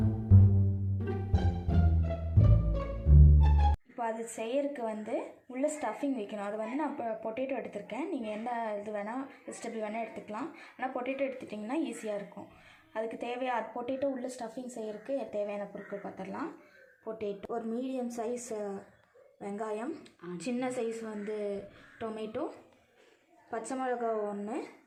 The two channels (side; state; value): both; identical; correlation 1.00